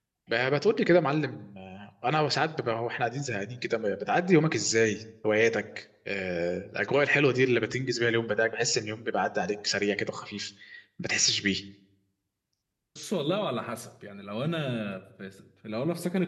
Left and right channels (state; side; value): identical; both; correlation 1.00